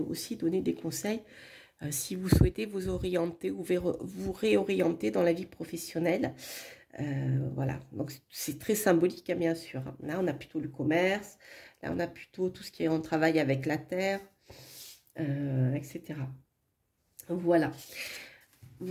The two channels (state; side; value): identical; both; correlation 1.00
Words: aussi donner des conseils si vous souhaitez vous orienter ou vous réorienter dans la vie professionnelle. Voilà, donc c'est très symbolique, hein, bien sûr. Là, on a plutôt le commerce, là, on a plutôt tout ce qui est en travail avec la terre, etc. Voilà.